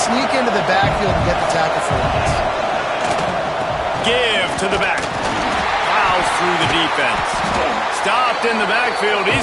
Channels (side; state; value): both; identical; correlation 1.00